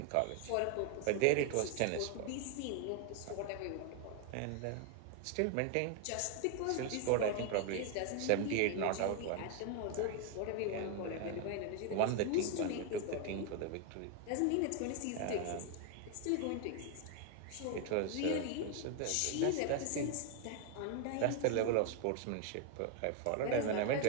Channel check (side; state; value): both; different; correlation 0.01